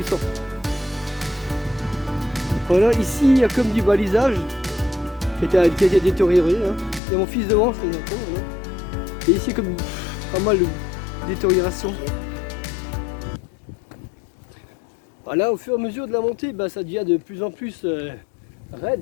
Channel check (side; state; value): right; drops out; at 7.0 s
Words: Voilà, ici il y a comme du balisage qui a été détérioré. Hein. Il y a mon fils devant, c'est bien. Hein. Et ici comme pas mal de détérioration. Voilà, au fur et à mesure de la montée, bah, ça devient de plus en plus